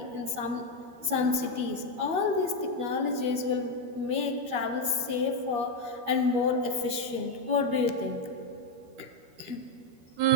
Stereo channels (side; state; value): left; late; 13 ms